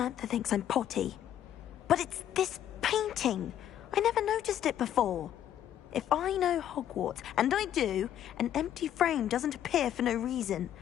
thinks I'm potty. But it's this painting. I never noticed it before. If I know Hogwarts, and I do, an empty frame doesn't appear for no reason.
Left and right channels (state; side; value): quieter; right; 10.8 dB